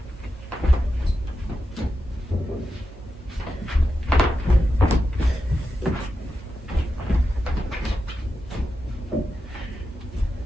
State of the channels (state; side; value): normal; both; correlation 0.89